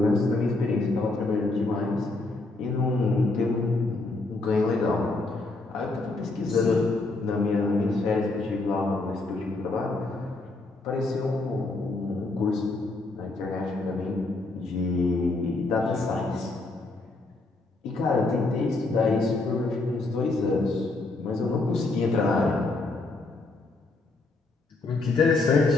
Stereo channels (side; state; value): right; quieter; 3.2 dB